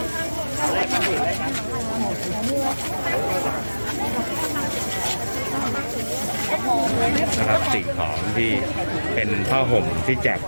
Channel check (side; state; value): both; inverted; correlation -1.00